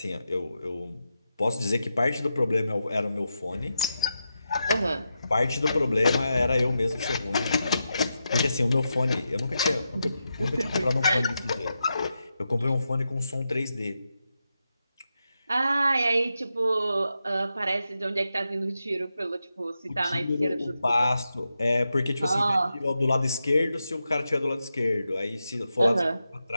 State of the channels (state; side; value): inverted; both; correlation -0.87